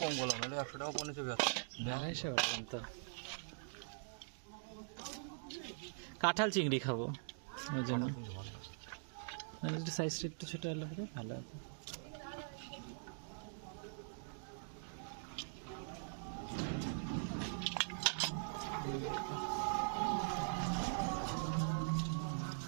কম বললাম, নাহলে 100 টাকা পড়ে যাবে। 250 বললাম তো। কাঁঠাল চিংড়ি খাবো ওই জন্য। সাইজটা একটু ছোট হলে পরে ভালো হবে।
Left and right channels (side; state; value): left; silent; digital silence